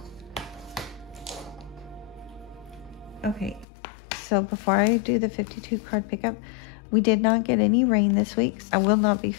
okay, so before I do the 52 card pickup, we did not get any rain this week. I will not be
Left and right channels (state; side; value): drops out; right; at 3.7 s